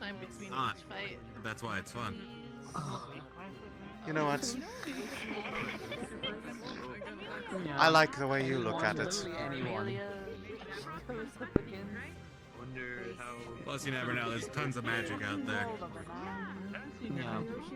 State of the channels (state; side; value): identical; both; correlation 1.00